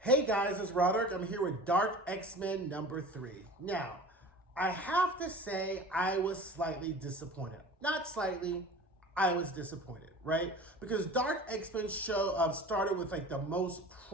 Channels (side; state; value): both; normal; correlation 0.40